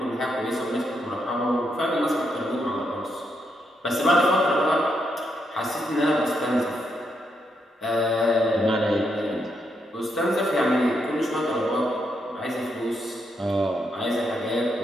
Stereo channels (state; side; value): normal; both; correlation 0.79